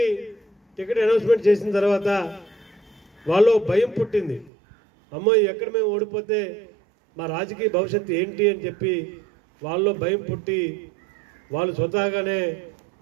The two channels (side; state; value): left; drops out; at 4.5 s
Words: టికెట్ అనౌన్స్మెంట్ చేసిన తర్వాత వాళ్ళు భయం పుట్టింది, అమ్మో ఎక్కడ మేము ఓడిపోతే మా రాజకీయ భవిష్యత్తు ఏంటి అని చెప్పి వాళ్ళు భయం పుట్టి వాళ్ళు స్వతహాగానే